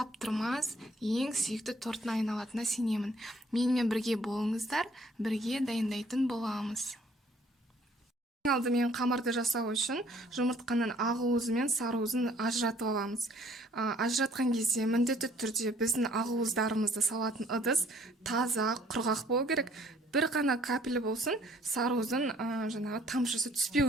ең сүйікті торттың айналатынына сенемін. Менімен бірге болыңыздар, бірге дайындайтын боламыз. Алдымен қамырды жасау үшін жұмыртқаның ақ уызы мен сары уызын ажыратып аламыз. Ажыратқан кезде міндетті түрде біздің ақ уыздарымызды салатын ыдыс таза, құрғақ болу керек. Бір ғана капель болсын, сары уыздың жаңағы тамшысы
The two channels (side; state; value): both; normal; correlation 0.60